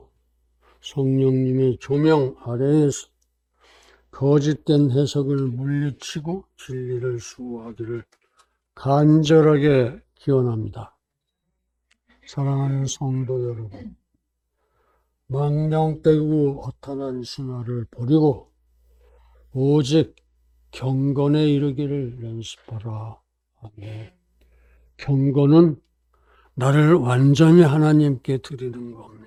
성령님의 조명 아래에서 거짓된 해석을 물리치고 진리를 수호하기를 간절하게 기원합니다. 사랑하는 성도 여러분, 망령되고 허탄한 신화를 버리고 오직 경건에 이르기를 연습하라. 아멘. 경건은 나를 완전히 하나님께 드리는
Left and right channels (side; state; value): both; identical; correlation 1.00